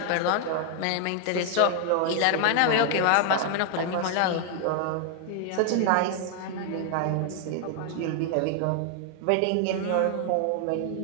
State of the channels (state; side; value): different; both; correlation 0.00